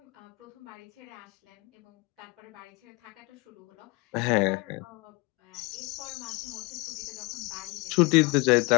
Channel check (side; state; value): right; quieter; 27.2 dB